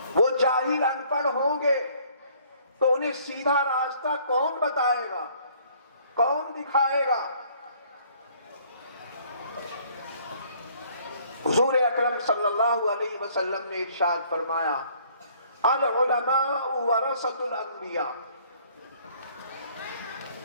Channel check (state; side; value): inverted; both; correlation -0.60